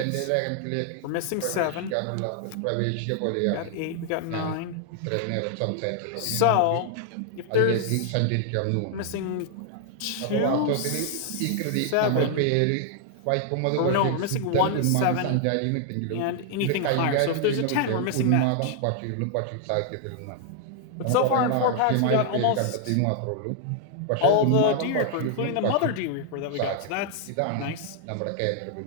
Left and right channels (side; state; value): both; different; correlation 0.00